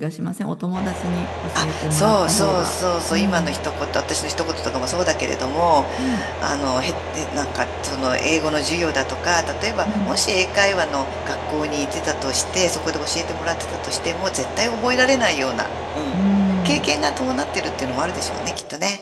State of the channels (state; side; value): identical; both; correlation 1.00